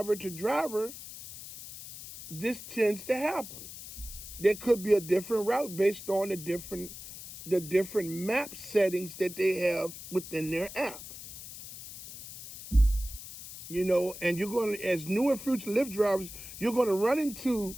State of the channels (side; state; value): left; noise; hiss, 13 dB below the sound